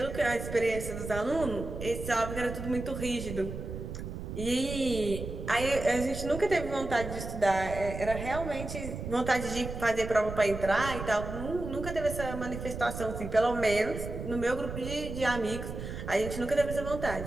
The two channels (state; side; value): noise; right; rumble, 7 dB below the sound